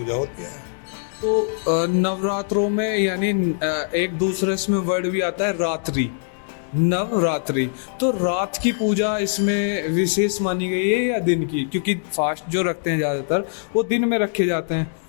होती है। तो नवरात्रों में यानी एक दूसरे इसमें वर्ड भी आता है रात्रि, नवरात्रि, तो रात की पूजा इसमें विशेष मानी गई है या दिन की? क्योंकि फास्ट जो रखते हैं ज्यादातर वो दिन में रखे जाते हैं।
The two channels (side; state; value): right; silent; digital silence